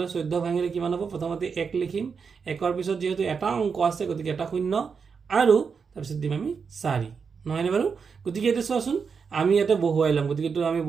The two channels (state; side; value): quieter; left; 5.8 dB